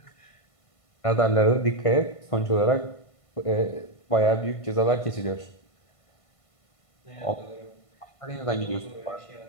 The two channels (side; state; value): right; late; 1.5 ms